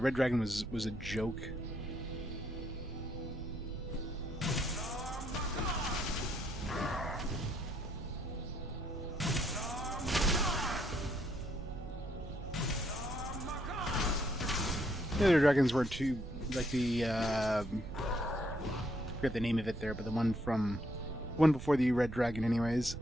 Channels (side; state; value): right; noise; rumble, 9 dB below the sound